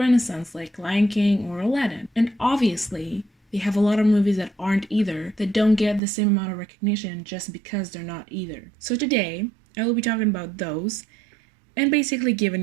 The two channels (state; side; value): drops out; left; at 6.0 s